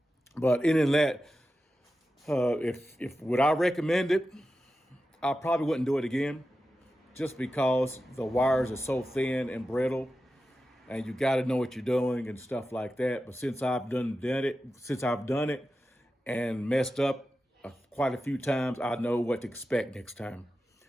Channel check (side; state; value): both; normal; correlation 0.92